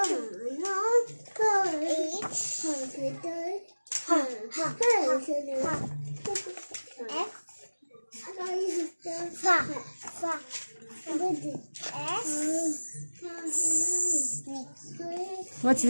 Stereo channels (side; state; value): both; inverted; correlation -1.00